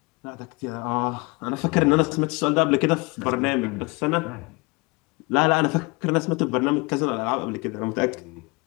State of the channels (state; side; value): quieter; right; 26.5 dB